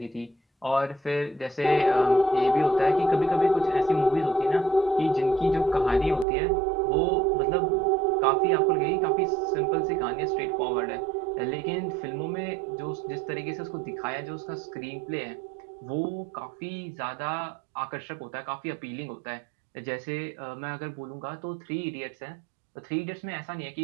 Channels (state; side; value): drops out; left; at 6.2 s